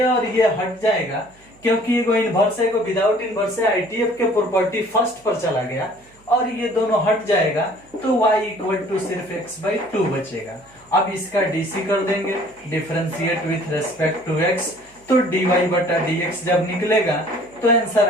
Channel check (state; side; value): noise; right; hum, 30 dB below the sound